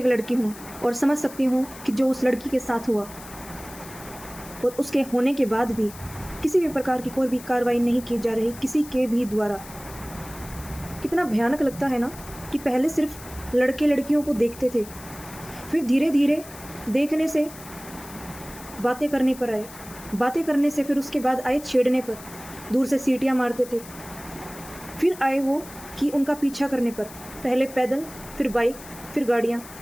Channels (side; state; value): left; noise; hiss, 17 dB below the sound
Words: लड़की हूँ और समझ सकती हूँ कि जो उस लड़की के साथ हुआ और उसके होने के बाद भी किसी भी प्रकार की कोई भी कार्रवाई नहीं की जा रही किसी के भी द्वारा। कितना भयानक लगता है ना कि पहले सिर्फ लड़के लड़कियों को देखते थे, फिर धीरे धीरे देखने से बातें करने पर आए, बातें करने से फिर उसके बाद आए छेड़ने पर, दूर से सीटियाँ मारते थे, फिर आए वो कि उनका पीछा करने पर, पहले पैदल फिर बाइक फिर गाड़ियाँ